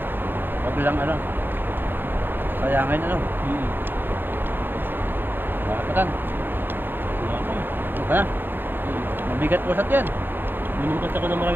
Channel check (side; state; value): left; late; 0.097 ms